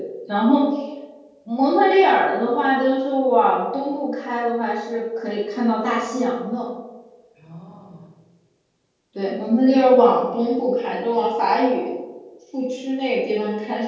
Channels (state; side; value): identical; both; correlation 1.00